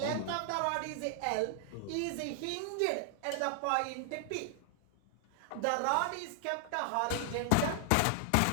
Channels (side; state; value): both; different; correlation 0.00